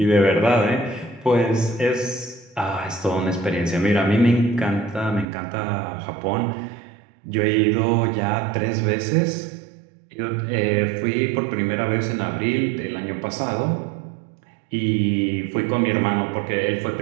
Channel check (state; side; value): drops out; left; at 5.2 s